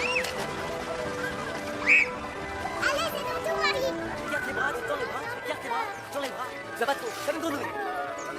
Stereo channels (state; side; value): identical; both; correlation 1.00